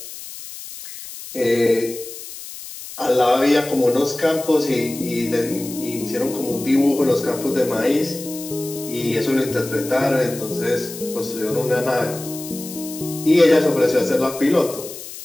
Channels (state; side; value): noise; left; hiss, 12 dB below the sound